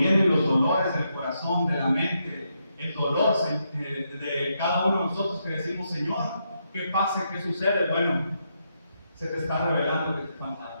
los dolores del corazón, de la mente, el dolor de cada uno de nosotros que decimos, Señor, ¿qué pasa? ¿Qué sucede? Bueno, se te está revelando que te falta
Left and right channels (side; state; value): both; inverted; correlation -0.81